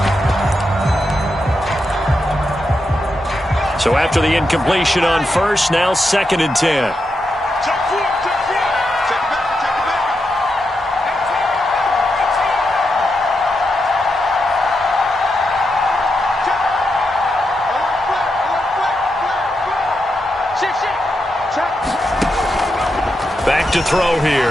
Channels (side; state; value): both; normal; correlation 0.85